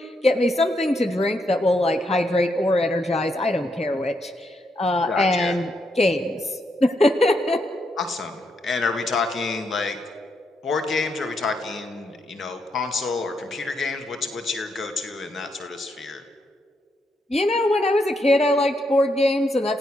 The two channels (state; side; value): normal; both; correlation 0.79